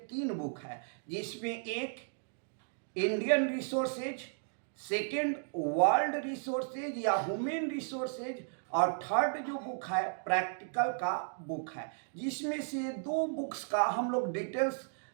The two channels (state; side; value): silent; left; digital silence